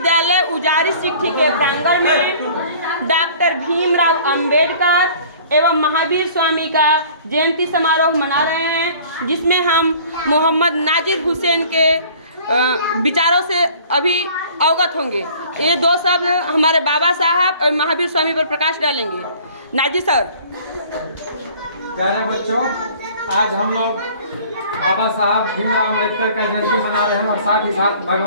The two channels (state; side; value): inverted; both; correlation -0.49